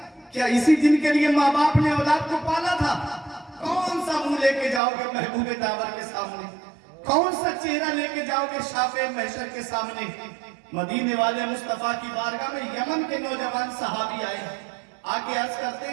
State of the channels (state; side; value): drops out; left; at 4.8 s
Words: क्या इसी दिन के लिए माँ बाप ने औलाद को पाला था? कौन सा मुंह लेके जाओगे महबूबे दावर के सामने? कौन सा चेहरा लेके जाओगे शाफे महशर के सामने? मदीने वाले मुस्तफा की बारगाह में यमन के नौजवान सहाबी आए, आके अर्ज करते